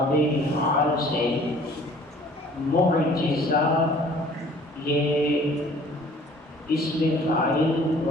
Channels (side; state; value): both; normal; correlation 0.53